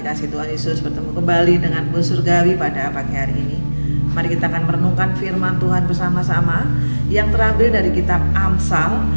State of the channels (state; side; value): inverted; both; correlation -1.00